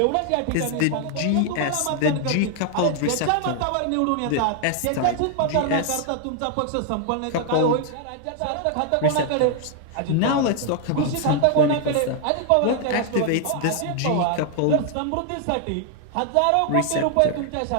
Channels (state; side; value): different; both; correlation 0.00